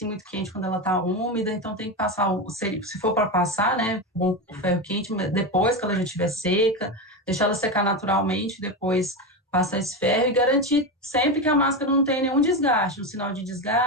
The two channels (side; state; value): both; normal; correlation 0.16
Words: muito quente quando ela está úmida, então tem que passar, se for para passar, né, o ferro quente, depois que ela já estiver seca, deixar ela secar naturalmente, depois passar esse ferro e garantir sempre que a máscara não tem nenhum desgaste, um sinal de